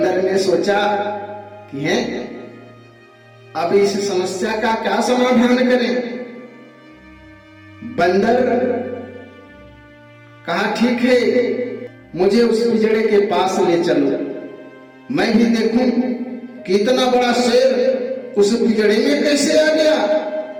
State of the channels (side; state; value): both; identical; correlation 1.00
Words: ने सोचा कि है अब इस समस्या का क्या समाधान करें। बंदर कहा ठीक है, मुझे उस पिंजड़े के पास ले चलो, मैं भी देखूं कि इतना बड़ा शेर उस पिंजड़े में कैसे आ गया।